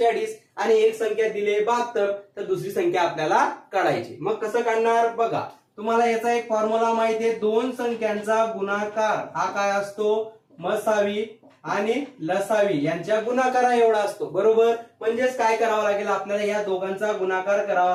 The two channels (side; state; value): both; identical; correlation 1.00